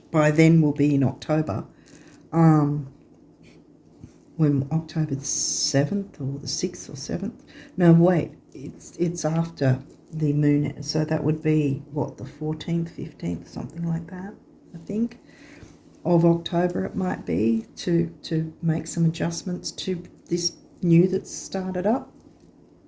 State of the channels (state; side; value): identical; both; correlation 1.00